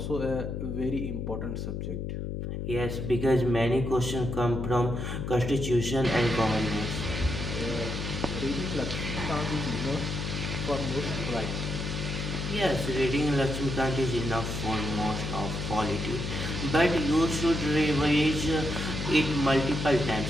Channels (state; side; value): noise; left; hum, 4 dB below the sound